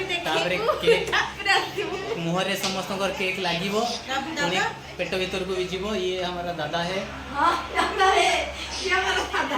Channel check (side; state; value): both; identical; correlation 1.00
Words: केक मुहरे समस्त केक लागिबो पुणी पेट भीतर को भी जीवो ये हमारा दादा है दादा है ये हमारा दादा